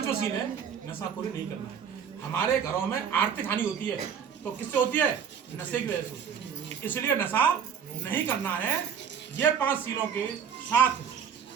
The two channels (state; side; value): quieter; left; 7.5 dB